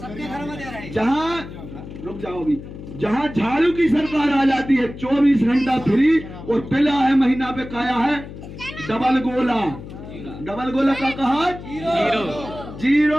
जहां रुक जाओ भी, जहां झाड़ू की सरकार आ जाती है 24 घंटा फ्री और पिला है महीना पे काया है डबल गोला। डबल गोला का कहा?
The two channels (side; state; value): left; noise; hum, 13 dB below the sound